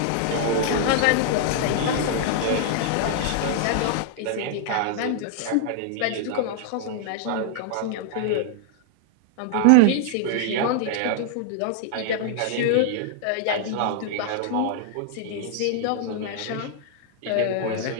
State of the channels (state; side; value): different; both; correlation 0.00